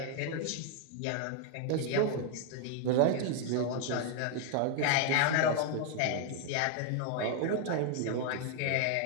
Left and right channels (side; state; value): both; different; correlation 0.00